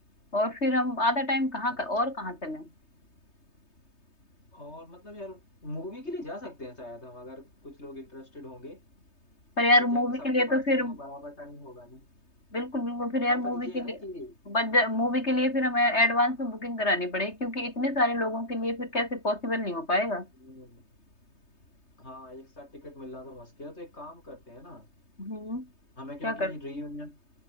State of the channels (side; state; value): right; late; 3.2 ms